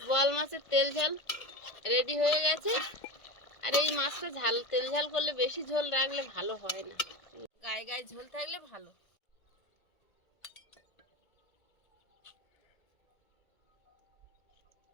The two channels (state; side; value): late; right; 1.8 ms